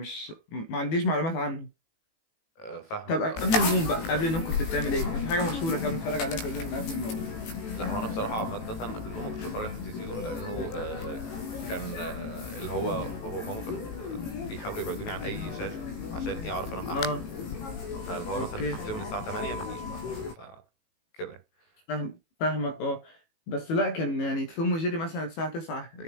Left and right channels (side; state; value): right; late; 18 ms